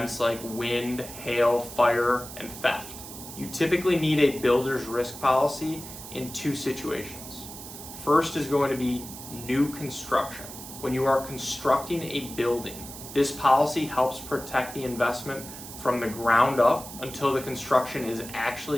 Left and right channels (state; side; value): noise; right; hiss, 13 dB below the sound